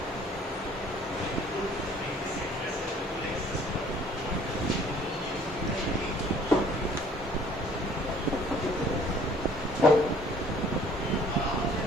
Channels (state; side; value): normal; both; correlation 0.56